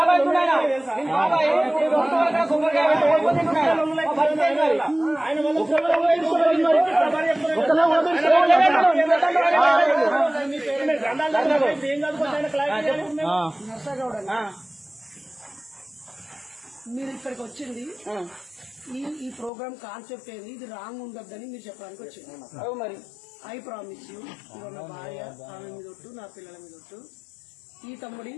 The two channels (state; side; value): drops out; right; at 19.5 s